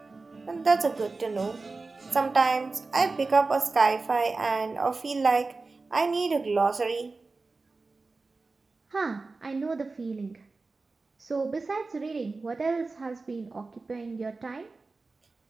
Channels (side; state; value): left; quieter; 3.8 dB